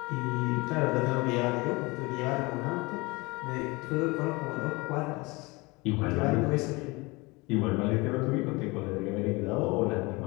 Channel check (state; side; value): quieter; right; 24.8 dB